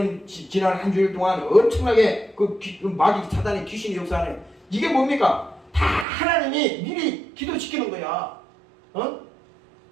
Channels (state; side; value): drops out; left; at 6.1 s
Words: 지난 한 주일 동안 엄청나게 그 마귀 사단의 귀신이 역사하네. 이게 뭡니까? 다 하나님이 미리 기도시키는 거야.